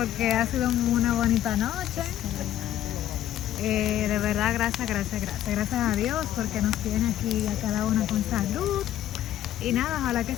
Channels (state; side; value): quieter; right; 12.2 dB